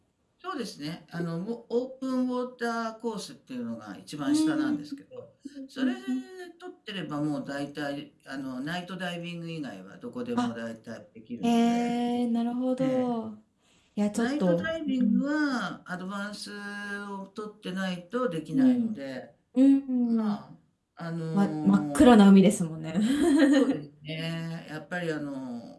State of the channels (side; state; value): both; identical; correlation 1.00